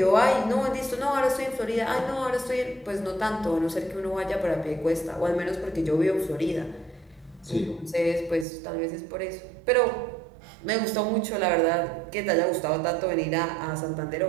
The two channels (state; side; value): drops out; left; at 8.5 s